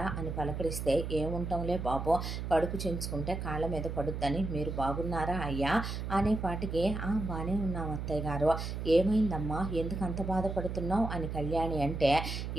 అని పలకరిస్తే ఏముంటాంలే బాబు, కడుపు చించుకుంటే కాళ్ళ మీద పడుద్దని, మీరు బాగున్నారా అయ్యా అనేపాటికి బాగానే ఉన్నాం అత్తయ్య గారు, ఏమైందమ్మా ఎందుకు అంత బాధపడుతున్నావు అని కళ్యాణి అంటే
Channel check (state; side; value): noise; right; hum, 4 dB below the sound